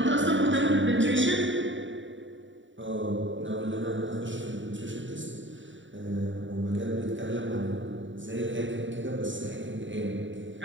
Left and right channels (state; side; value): late; left; 0.55 ms